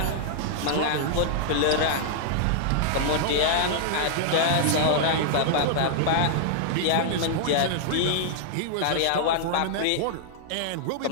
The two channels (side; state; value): both; different; correlation -0.01